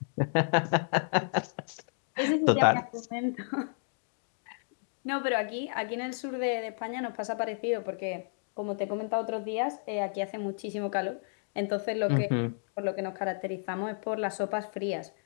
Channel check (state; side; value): silent; right; digital silence